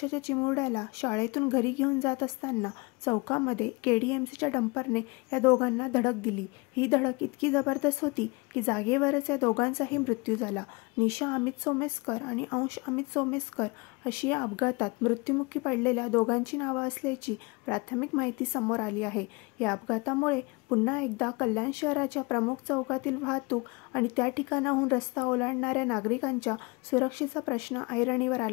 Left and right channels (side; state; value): right; quieter; 27.1 dB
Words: चिमुरड्याला शाळेतून घरी घेऊन जात असताना चौकामध्ये केडीएमसीच्या डंपरने या दोघांना धडक दिली। ही धडक इतकी जबरदस्त होती की जागेवरच या दोघांचाही मृत्यू झाला। निशा अमित सोमेस्कर आणि अंश अमित सोमेस्कर अशी या अपघातात मृत्युमुखी पडलेल्या दोघांची नावे असल्याची प्राथमिक माहिती समोर आली आहे। या अपघातामुळे पुन्हा एकदा कल्याण शहराच्या प्रमुख चौकातील वाहतूक आणि त्या ठिकाणाहून रस्ता ओलांडणाऱ्या नागरिकांच्या सुरक्षेचा प्रश्न ऐरणीवर